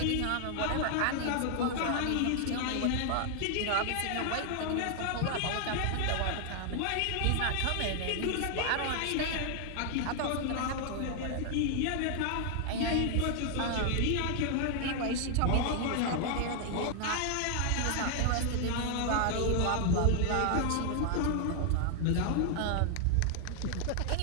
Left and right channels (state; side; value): different; both; correlation 0.00